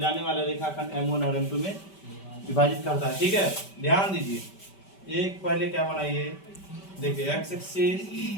वाले रेखाखंड M1 और M2 में विभाजित करता है। ठीक है, ध्यान दीजिए। एक पहले क्या बनाइए, देखिए X axis,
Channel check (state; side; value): late; right; 5.1 ms